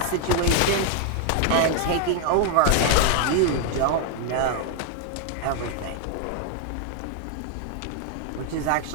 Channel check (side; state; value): both; different; correlation 0.00